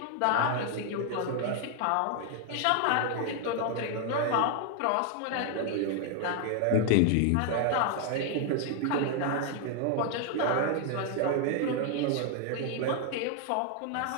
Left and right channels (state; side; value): different; both; correlation 0.00